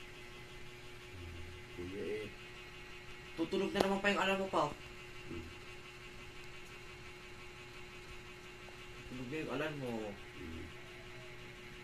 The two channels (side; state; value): both; identical; correlation 1.00